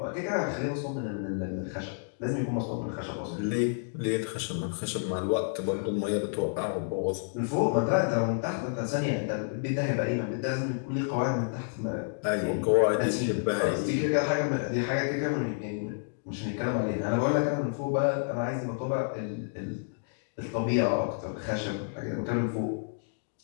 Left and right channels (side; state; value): right; silent; digital silence